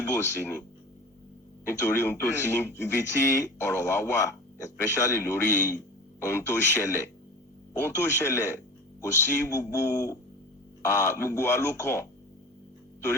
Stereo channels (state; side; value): normal; both; correlation 0.34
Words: sí ni nítorí ohun tó ti ibi tí ọ̀rọ̀ wa wà especially lórí ohun tó ṣẹlẹ̀ kò sí gbogbo wa ló kàn